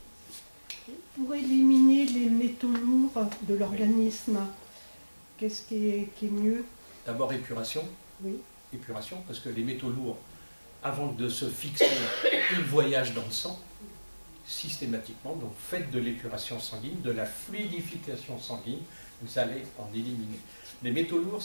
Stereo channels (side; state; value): both; inverted; correlation -1.00